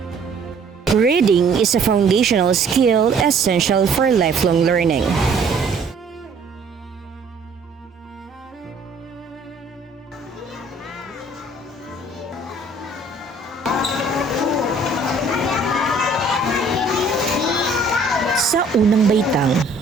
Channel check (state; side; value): quieter; left; 3.1 dB